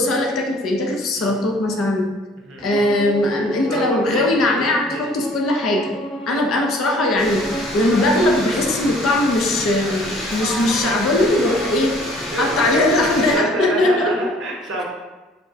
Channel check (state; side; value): normal; both; correlation 0.55